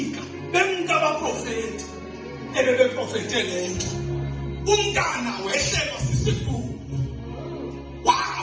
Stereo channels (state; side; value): identical; both; correlation 1.00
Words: bemka abaprofeti ebebeprofete lento. Umntana wehlelwa sisifundo